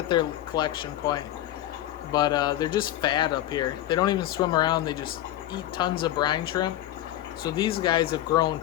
their collection point, but they're just fat up here. They don't even swim around. They just eat tons of brine shrimp. So these guys have grown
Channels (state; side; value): quieter; right; 13.5 dB